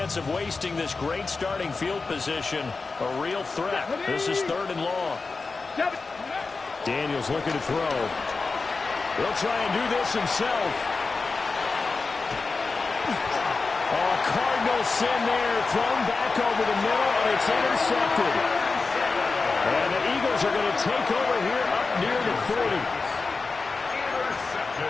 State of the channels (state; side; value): quieter; right; 4.1 dB